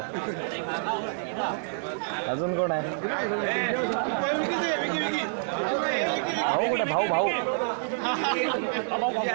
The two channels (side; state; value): left; silent; 60 dB below the other